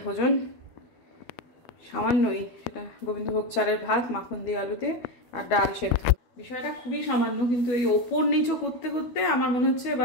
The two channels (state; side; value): late; right; 12 ms